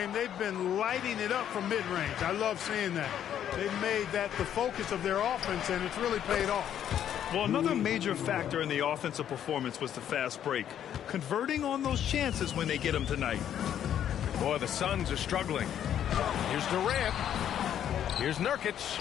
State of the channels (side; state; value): right; quieter; 10.0 dB